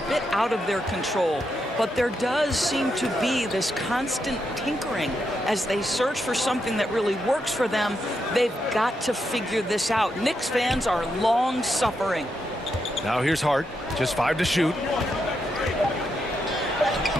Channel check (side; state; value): both; normal; correlation 0.82